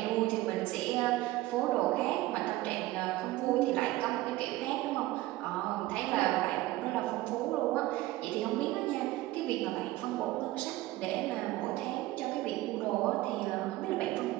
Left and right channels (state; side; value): quieter; left; 17.5 dB